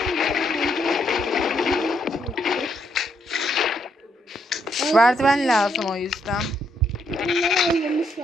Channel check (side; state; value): both; normal; correlation 0.75